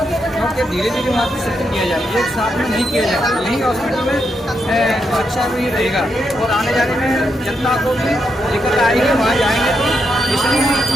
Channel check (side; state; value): both; normal; correlation 0.81